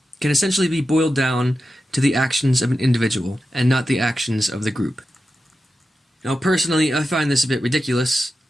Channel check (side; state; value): both; normal; correlation 0.91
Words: can essentially be boiled down to the actions of an individual and not the actions of the group. Now, personally, I find this a bit ridiculous